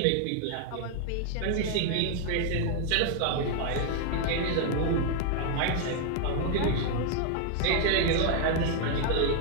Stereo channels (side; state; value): both; different; correlation 0.00